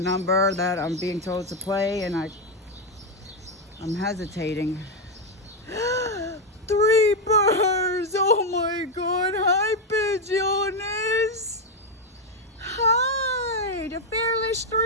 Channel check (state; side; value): normal; both; correlation 0.04